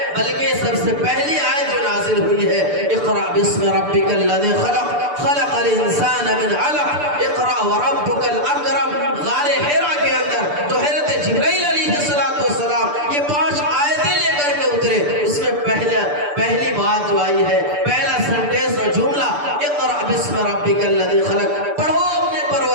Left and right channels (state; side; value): late; left; 6.8 ms